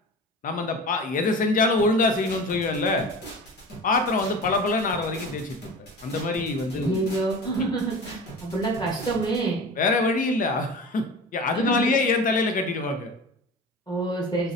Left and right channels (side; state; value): both; normal; correlation 0.34